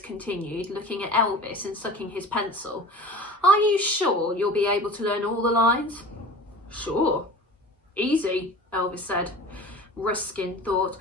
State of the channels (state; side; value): normal; both; correlation 0.38